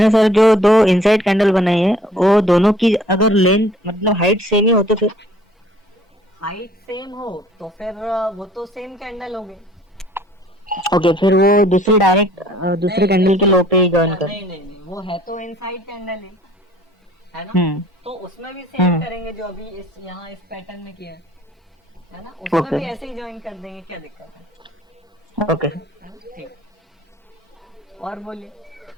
सर जो दो इनसाइड कैंडल बनाई है वो दोनों की अगर लेंथ मतलब हाइट सेम ही हो तो फिर? हाइट सेम हो तो फिर वो तो सेम कैंडल हो गई। ओके, फिर वो दूसरी डायरेक्ट दूसरे कैंडल के लो पे ही ज्वाइन कर। नहीं, वो है तो इनसाइड कैंडल है ना। तो उसमें भी सेम करेंगे जो अभी इस यहाँ इस पैटर्न में किया है ना, उसमें भी ऐसे ही ज्वाइन कर देंगे, क्या दिक्कत है? ओके ठीक। और बोलिए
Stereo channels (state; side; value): normal; both; correlation 0.55